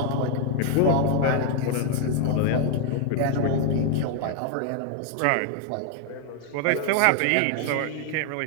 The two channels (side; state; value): both; different; correlation 0.00